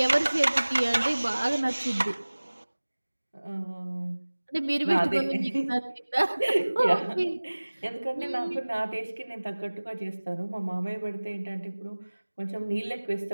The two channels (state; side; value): inverted; both; correlation -1.00